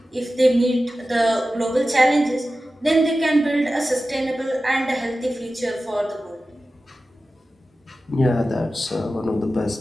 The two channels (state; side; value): normal; both; correlation 0.94